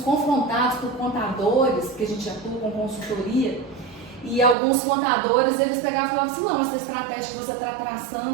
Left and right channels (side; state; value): left; drops out; at 4.5 s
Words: por contadores, que a gente atua com consultoria, e alguns contadores, eles pegavam e falavam assim, não, essa estratégia que você está